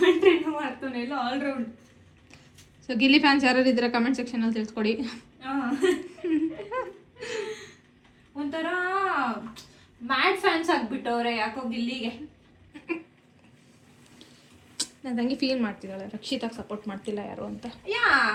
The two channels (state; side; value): identical; both; correlation 1.00